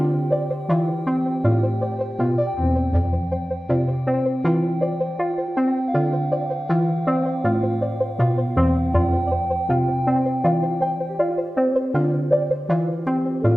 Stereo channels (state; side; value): normal; both; correlation 0.96